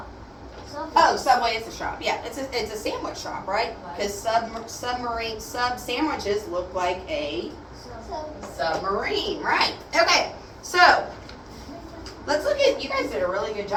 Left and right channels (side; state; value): both; identical; correlation 1.00